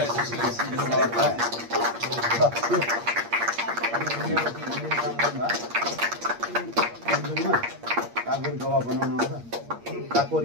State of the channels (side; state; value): left; late; 8.6 ms